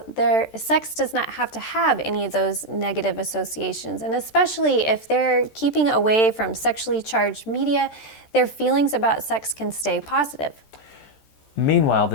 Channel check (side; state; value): right; late; 13 ms